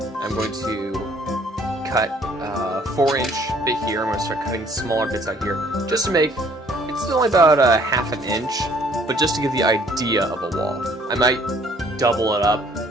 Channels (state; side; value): normal; both; correlation 0.59